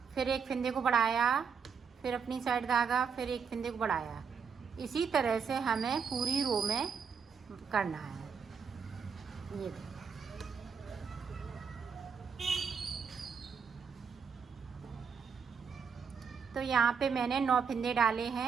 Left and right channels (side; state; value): left; quieter; 6.2 dB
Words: फिर एक फंदे को बढ़ाया, फिर अपनी साइड धागा, फिर एक फंदे को बढ़ाया। इसी तरह से हमें पूरी रो में करना है। ये तो यहाँ पे मैंने 9 फंदे डाले